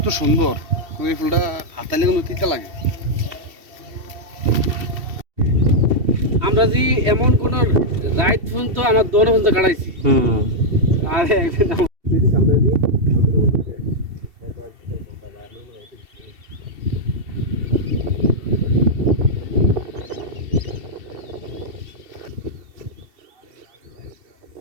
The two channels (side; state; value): left; late; 2.7 ms